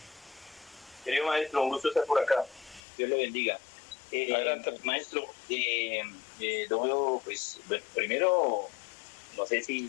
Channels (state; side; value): drops out; right; at 2.8 s